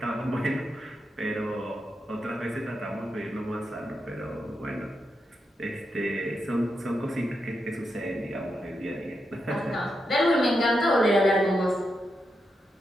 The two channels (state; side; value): normal; both; correlation 0.85